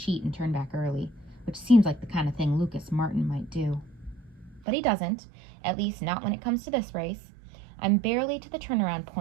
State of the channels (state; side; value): drops out; left; at 4.7 s